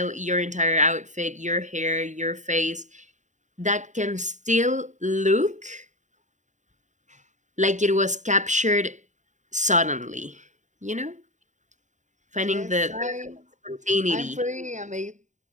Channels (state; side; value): late; left; 0.35 ms